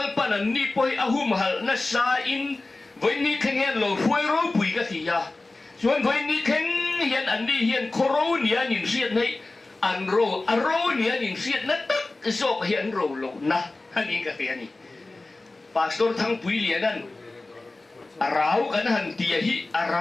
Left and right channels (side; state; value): right; quieter; 3.1 dB